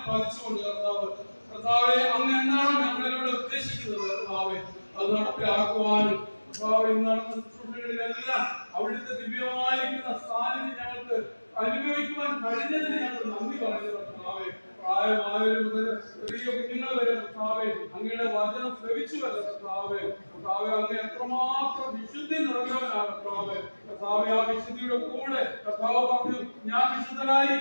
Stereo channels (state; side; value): inverted; both; correlation -1.00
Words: പതിച്ചുകൊണ്ട് കർത്താവെ, അങ്ങ് എന്താണോ ഞങ്ങളിലൂടെ ഉദ്ദേശിക്കുന്നത് കർത്താവെ, അത് നടപ്പിലാക്കുവാനും കർത്താവെ, ഇന്ന് നടന്ന ശുശ്രൂഷകളിലെല്ലാം അവിടുത്തെ ദിവ്യമായിരിക്കുന്ന സാന്നിധ്യം ഞങ്ങൾക്ക് അനുഭവിക്കുവാൻ കഴിഞ്ഞതിന് ഞങ്ങൾ നന്ദി പറയുന്നു കർത്താവെ. പ്രായമായവരും മുതൽ ചെറിയ കുഞ്ഞുങ്ങൾ വരെ കർത്താവെ, അങ്ങയുടെ വചനം ശ്രവിച്ചുവല്ല കർത്താവെ. കർത്താവെ, അങ്ങ് എത്രമാത്രം വിശുദ്ധി നിറഞ്ഞവനാണ് കർത്താവെ. കർത്താവെ, ആ വിശുദ്ധിയുടെ കൂടെ കർത്താവ് പറഞ്ഞു, ഞാൻ